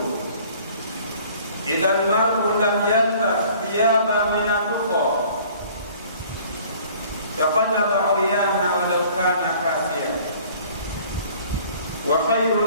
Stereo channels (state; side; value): inverted; both; correlation -0.52